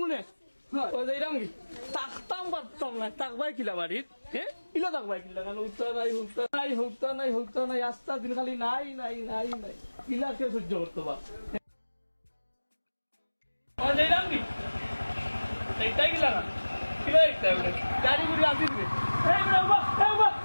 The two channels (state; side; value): inverted; both; correlation -1.00